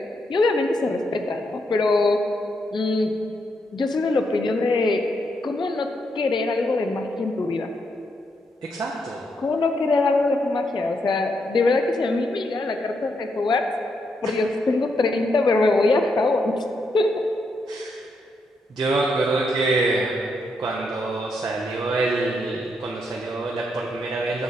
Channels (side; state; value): both; normal; correlation 0.80